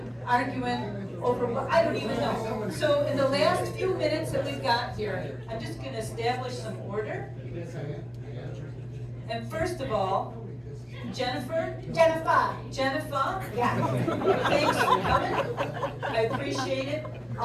arguing over what I don't even know. So in the last few minutes that we've got here, I'm just going to establish some order. And first of all, Jennifer. Jennifer. Yeah. Thanks for coming. I appreciate it.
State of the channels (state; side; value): identical; both; correlation 1.00